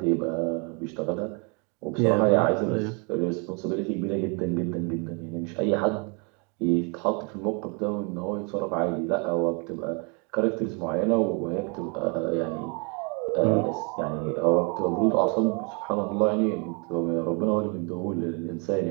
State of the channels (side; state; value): left; quieter; 33.8 dB